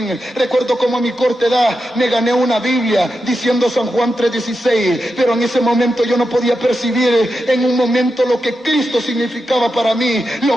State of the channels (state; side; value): normal; both; correlation 0.88